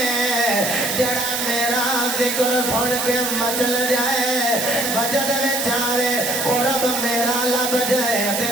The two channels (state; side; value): noise; right; hiss, 2 dB below the sound